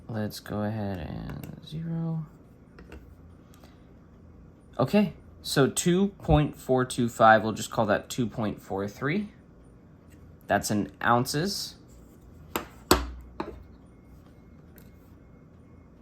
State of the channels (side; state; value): both; identical; correlation 1.00